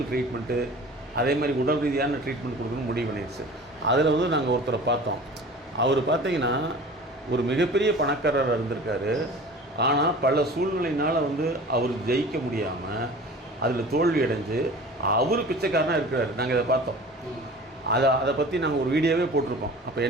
ட்ரீட்மெண்ட்டு, அதே மாதிரி உடல் ரீதியான ட்ரீட்மெண்ட் கொடுக்கணும்னு முடிவு பண்ணிடுச்சு. அதில் வந்து நாங்கள் ஒருத்தரை பார்த்தோம். அவர் பார்த்தீங்கன்னா ஒரு மிகப்பெரிய பணக்காரராக இருந்திருக்காரு. ஆனால் பல சூழ்நிலையினால் வந்து அவர் ஜெயிக்க முடியாமல் அதில் தோல்வி அடைஞ்சு அவர் பிச்சைக்காரனாக இருக்கிறார். நாங்கள் இதை பார்த்தோம். அதை பற்றி நாங்கள் ஒரு வீடியோவே போட்டிருக்கோம். அப்போ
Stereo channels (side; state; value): both; normal; correlation 0.41